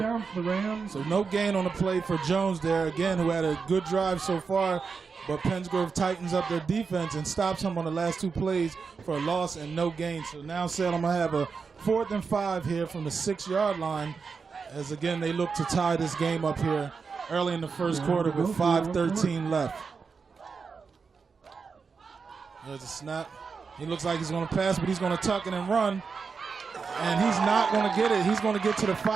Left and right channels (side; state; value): left; quieter; 5.2 dB